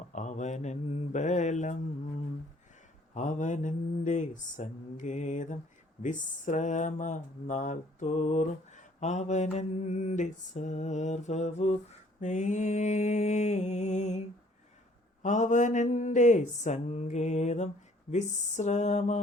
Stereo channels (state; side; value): normal; both; correlation 0.59